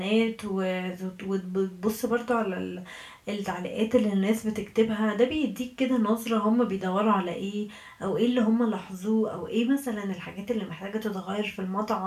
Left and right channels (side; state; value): both; identical; correlation 1.00